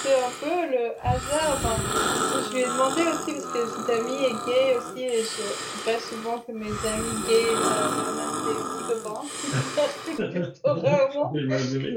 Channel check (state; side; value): identical; both; correlation 1.00